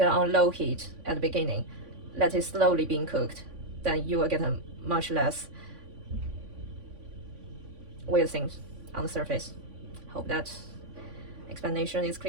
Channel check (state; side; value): late; left; 3.5 ms